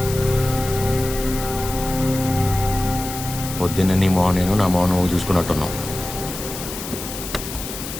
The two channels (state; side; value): noise; left; hiss, 9 dB below the sound